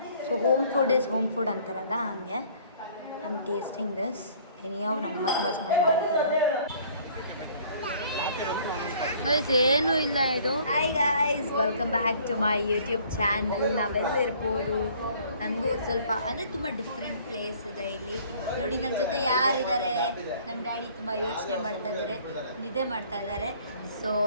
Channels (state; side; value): inverted; both; correlation -0.56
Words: So home food is home food ಅಂತಾರಲ್ಲ ಹಂಗೆ. I am tasting this. Anyway ನಮ್ಮ ತುಂಬ ಚೆನ್ನಾಗಿ ಮಾಡ್ತಾರೆ ಗೈಸ್. ಏನೂ ಇಲ್ಲ ಇದು. Hi guys, welcome back to my YouTube channel. ನಾವೆಲ್ಲಿರ್ಬೋದು, ನನಗೂ ಸ್ವಲ್ಪ ಅಂದರೆ ತುಂಬ ಡಿಫ್ರೆಂಟ್ ಪ್ಲೇಸ್ ಇದೆ ಇಲ್ಲಿ. ನೋಡಿ ನನ್ನ ಜೊತೆ ಯಾರಿದ್ದಾರೆ, ನಮ್ಮ ಡ್ಯಾಡಿ ತುಂಬ ಯೋಚನೆ ಮಾಡ್ತಾ ಇದ್ದಾರೆ, ನಿದ್ದೆ ಮಾಡ್ತಾ ಇದ್ದಾರೆ. ಸೊ